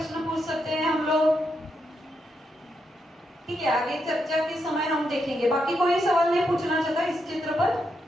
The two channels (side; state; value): both; normal; correlation 0.82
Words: पूछ सकते हैं हम लोग? ठीक है, आगे चर्चा के समय हम देखेंगे। बाकी कोई सवाल नहीं पूछना चाहता इस चित्र पर?